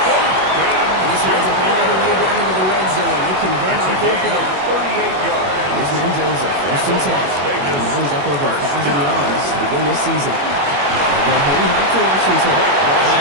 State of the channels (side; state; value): left; late; 21 ms